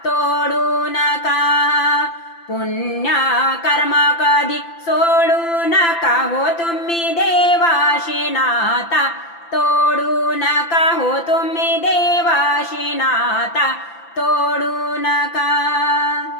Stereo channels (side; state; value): right; late; 5.9 ms